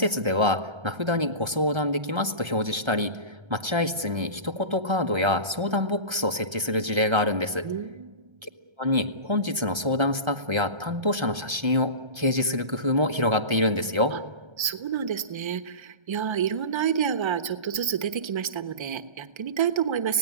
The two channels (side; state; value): left; late; 1.3 ms